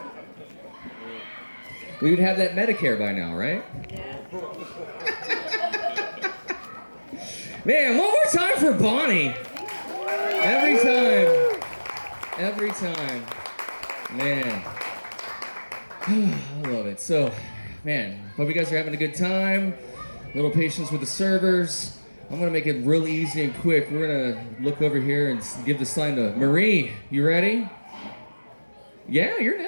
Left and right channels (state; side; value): inverted; both; correlation -1.00